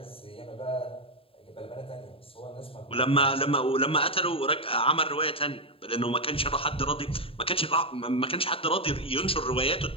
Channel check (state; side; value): late; right; 0.27 ms